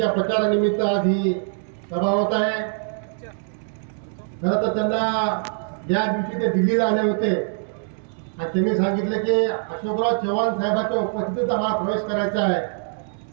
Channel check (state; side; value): silent; left; digital silence